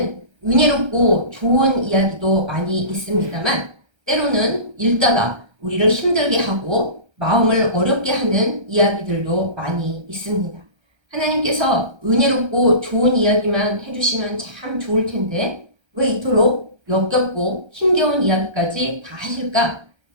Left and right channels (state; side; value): late; left; 1.3 ms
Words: 은혜롭고 좋은 이야기도 많이 있습니다만 때로는 읽다가 우리를 힘들게 하고 마음을 어렵게 하는 이야기들도 많이 있습니다. 하나님께서 은혜롭고 좋은 이야기만 해주시면 참 좋을 텐데 왜 이토록 역겹고 힘겨운 이야기까지 다 하실까?